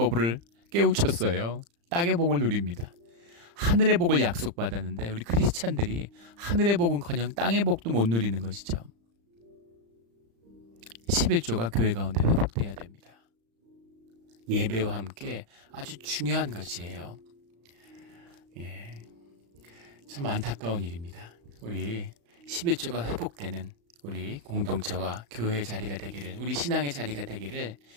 깨우쳤어요. 땅의 복을 누립니다. 하늘의 복을 약속받았는데 우리 크리스찬들이 하늘의 복은커녕 땅의 복도 못 누리는 것이죠. 11조가 교회 가운데 회복돼야 됩니다. 예배와 함께 아주 중요한 것이에요. 참 안타까운 일입니다. 우리 11조가 회복되는 우리 공동체와 교회의 자리가 되기를, 우리 신앙의 자리가 되기를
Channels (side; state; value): left; late; 35 ms